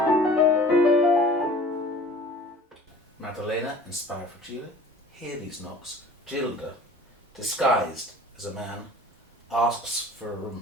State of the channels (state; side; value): normal; both; correlation 0.45